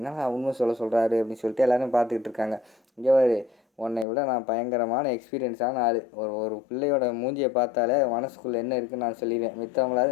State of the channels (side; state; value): right; drops out; at 4.0 s